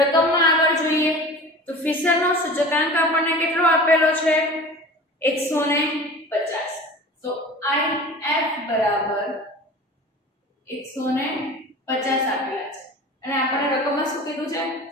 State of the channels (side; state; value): both; normal; correlation 0.38